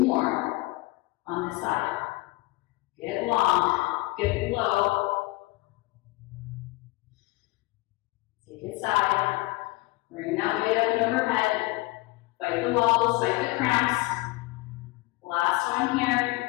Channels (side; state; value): right; quieter; 21.5 dB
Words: on this side. Get long, get low. Take it side, bring that weight up and overhead, fight the walls, fight the cramps. Last one here.